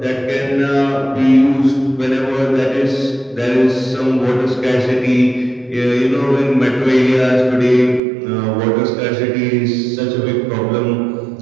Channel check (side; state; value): left; drops out; at 8.0 s